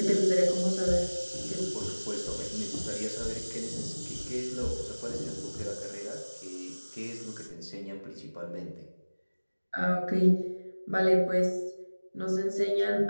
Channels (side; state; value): both; inverted; correlation -1.00